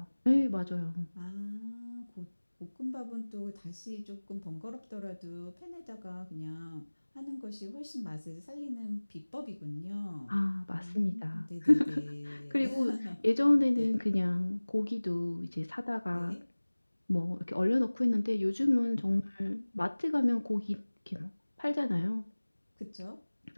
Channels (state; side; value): inverted; both; correlation -1.00